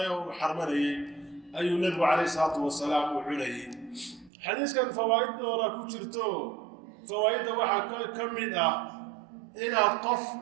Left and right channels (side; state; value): left; drops out; at 4.3 s